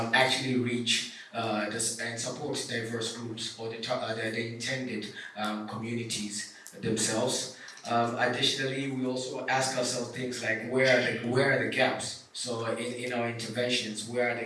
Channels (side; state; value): both; identical; correlation 1.00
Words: actually reach and support diverse groups or the intended communities themselves? Additionally, we also ask ourselves things like where are the gaps? So in our interventions, where are